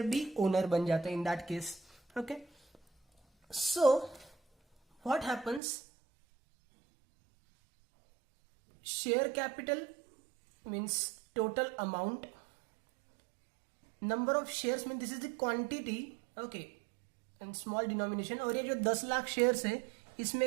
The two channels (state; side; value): drops out; left; at 5.6 s